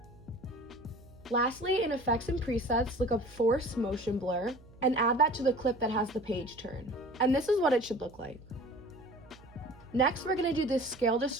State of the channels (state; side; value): noise; right; hum, 23 dB below the sound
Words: Lastly, in Effects and Presets, look up Force Motion Blur and add that to the clip that has the page turn. And this is what it should look like. Next, we're going to do this Scale